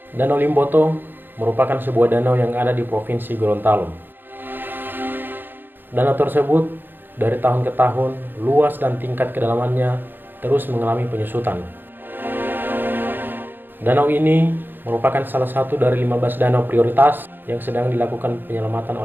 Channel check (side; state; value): left; late; 0.095 ms